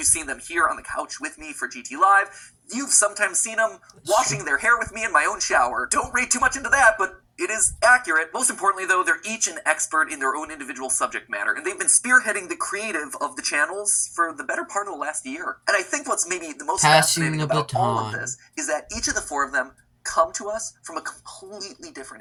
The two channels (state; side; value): identical; both; correlation 1.00